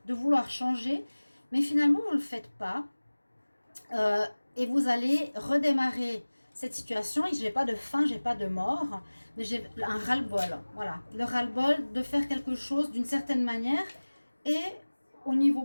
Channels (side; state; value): both; inverted; correlation -1.00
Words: de vouloir changer, mais finalement vous ne le faites pas. Et vous allez redémarrer cette situation. Je n'ai pas de fin, je n'ai pas de mort, mais j'ai un ras-le-bol. Voilà, le ras-le-bol de faire quelque chose d'une certaine manière. Et au niveau